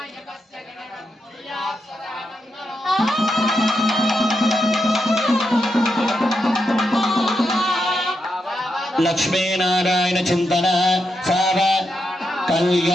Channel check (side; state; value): both; normal; correlation 0.84